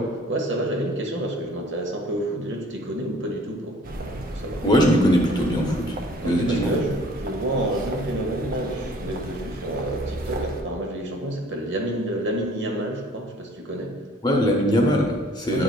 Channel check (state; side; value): normal; both; correlation 0.54